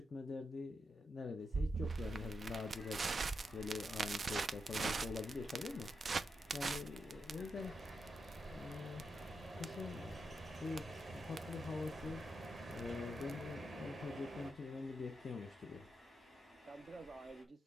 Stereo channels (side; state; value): both; normal; correlation 0.85